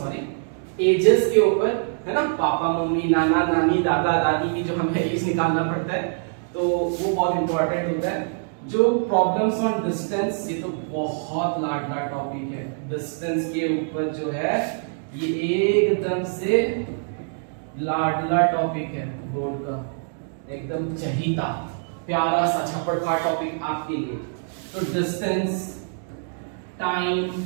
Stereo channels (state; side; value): silent; left; digital silence